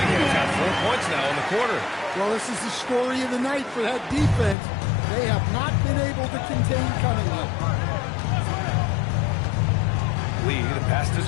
got 4 points now in the quarter. Well, this is the story of the night for that defense. They have not been able to contain Cunningham. Lee, the pass to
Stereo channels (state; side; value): drops out; right; at 4.5 s